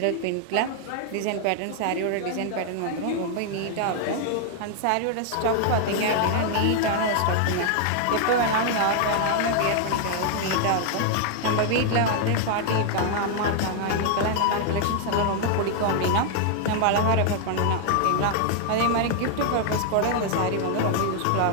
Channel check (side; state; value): both; different; correlation 0.00